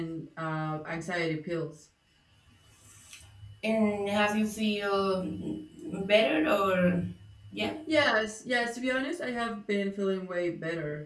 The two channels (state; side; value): identical; both; correlation 1.00